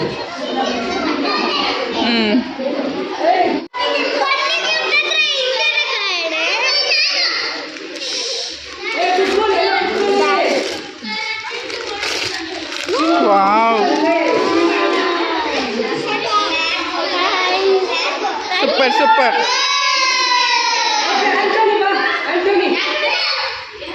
ವಾವ್, ಸೂಪರ್ ಸೂಪರ್. ಆಂಟೋನಿ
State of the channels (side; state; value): both; identical; correlation 1.00